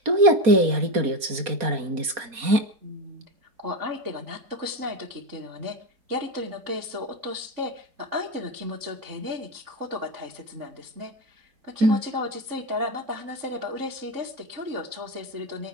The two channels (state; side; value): late; left; 4.2 ms